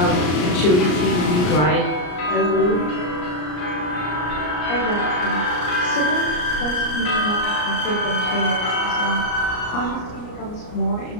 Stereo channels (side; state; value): right; late; 34 ms